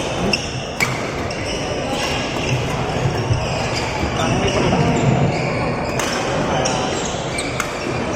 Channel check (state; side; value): identical; both; correlation 1.00